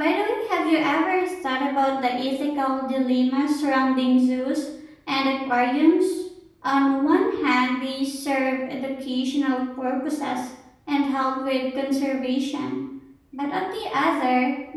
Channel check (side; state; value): both; identical; correlation 1.00